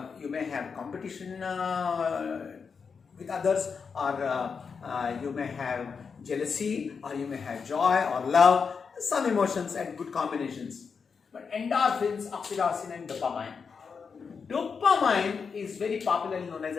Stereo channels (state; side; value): quieter; right; 5.7 dB